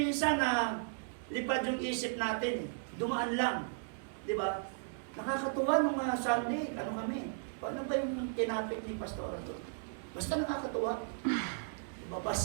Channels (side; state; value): left; silent; digital silence